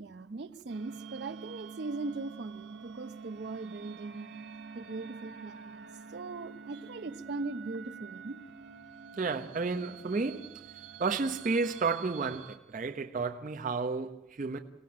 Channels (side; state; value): left; quieter; 3.8 dB